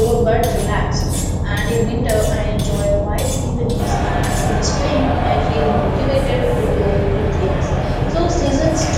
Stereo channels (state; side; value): identical; both; correlation 1.00